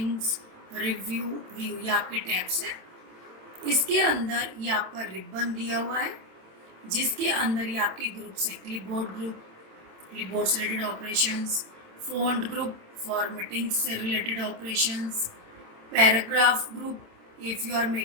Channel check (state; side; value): late; left; 27 ms